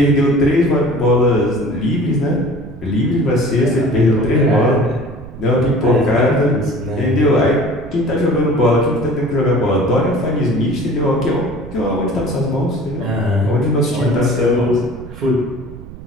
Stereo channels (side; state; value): right; noise; rumble, 15 dB below the sound